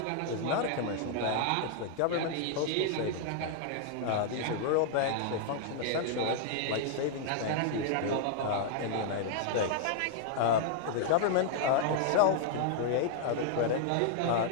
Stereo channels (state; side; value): different; both; correlation -0.01